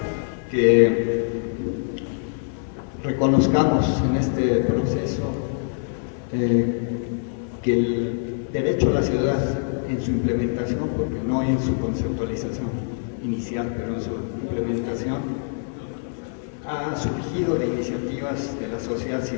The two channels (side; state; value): right; silent; digital silence